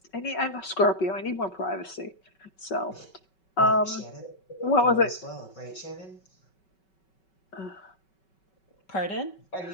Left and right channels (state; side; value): late; right; 5.3 ms